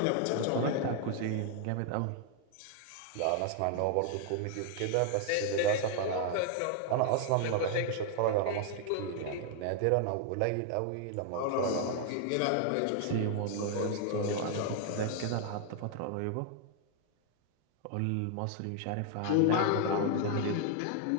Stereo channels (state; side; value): different; both; correlation 0.00